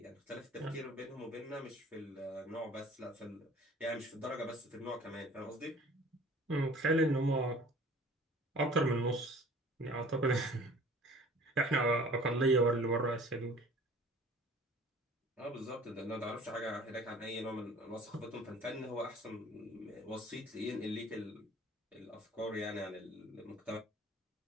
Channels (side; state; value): both; normal; correlation 0.49